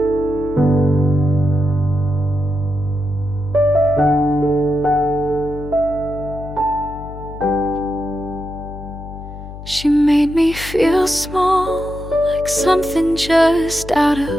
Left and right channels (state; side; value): noise; left; hum, 13 dB below the sound